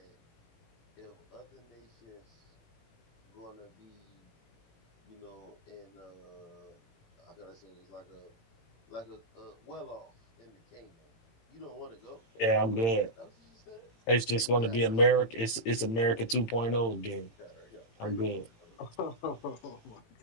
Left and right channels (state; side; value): late; right; 18 ms